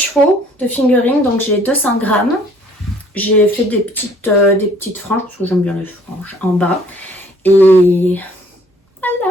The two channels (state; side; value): normal; both; correlation 0.58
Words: de fingering, donc j'ai 200 grammes. J'ai fait des petites franges, parce que j'aime bien les franges, en bas. Et